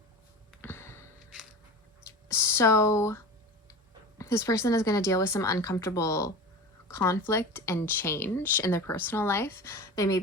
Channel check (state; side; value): normal; both; correlation 0.31